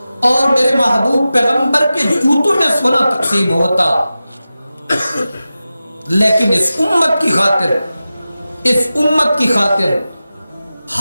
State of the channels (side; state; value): both; inverted; correlation -0.94